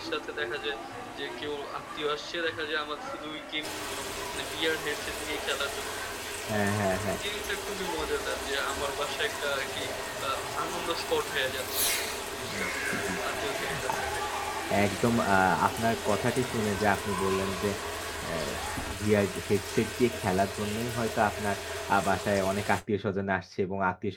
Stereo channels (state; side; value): identical; both; correlation 1.00